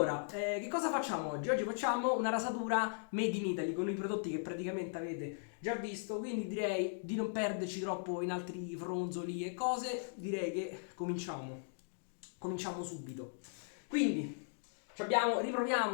che cosa facciamo oggi? Oggi facciamo una rasatura made in Italy con i prodotti che praticamente avete già visto, quindi direi di non perderci troppo in altri fronzoli e cose, direi che cominciamo subito. Quindi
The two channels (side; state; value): right; silent; digital silence